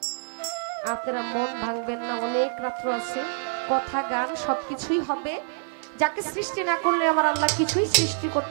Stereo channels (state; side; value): silent; left; digital silence